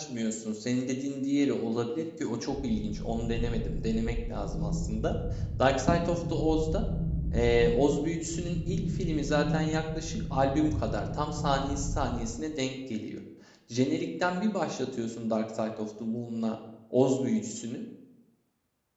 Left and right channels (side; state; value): both; identical; correlation 1.00